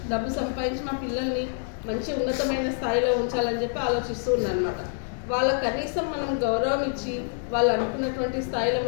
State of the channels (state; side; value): silent; right; 61 dB below the other